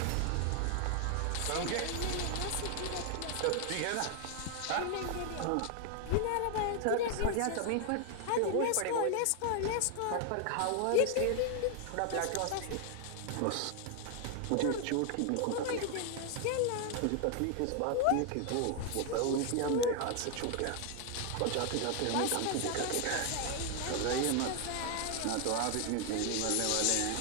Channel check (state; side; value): different; both; correlation 0.00